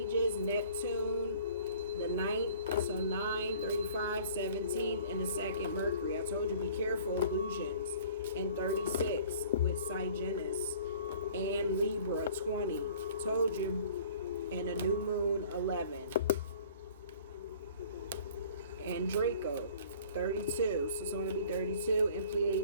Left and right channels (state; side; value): inverted; both; correlation -0.49